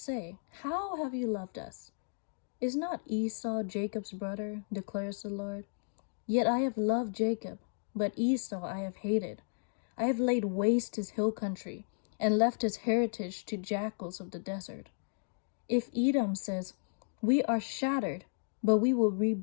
how have you loved us? Is not Esau Jacob's brother, declares the Lord? Yet I have loved Jacob, but Esau I have hated. I have laid waste his hill country, and left his heritage to jackals of the desert. If Edom says, we are shattered, but we will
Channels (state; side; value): silent; right; digital silence